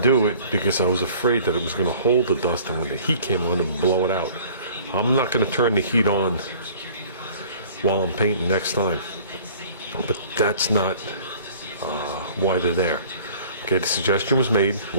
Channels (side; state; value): both; inverted; correlation -0.50